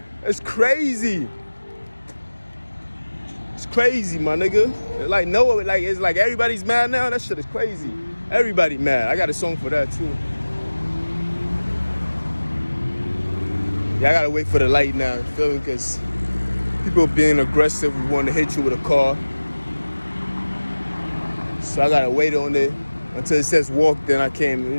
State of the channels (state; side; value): inverted; both; correlation -1.00